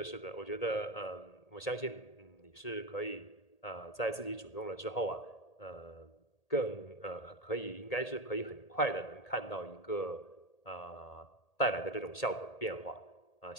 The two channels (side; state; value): right; late; 1.8 ms